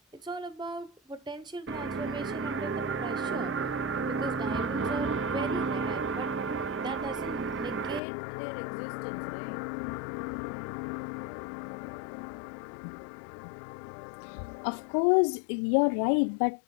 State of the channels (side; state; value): right; drops out; at 8.0 s